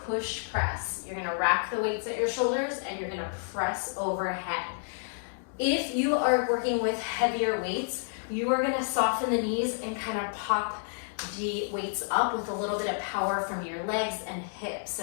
push press. You're gonna rack the weights at your shoulders and you're gonna press overhead. If you are working with heavier weights, you are gonna soften the knees and kind of pop the weights up with a little bit of power from your legs and hips,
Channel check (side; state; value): right; silent; 58 dB below the other